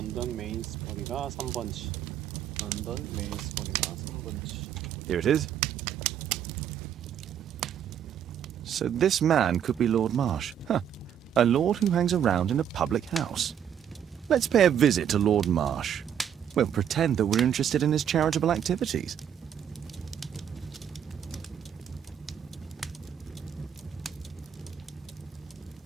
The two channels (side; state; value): left; quieter; 9.1 dB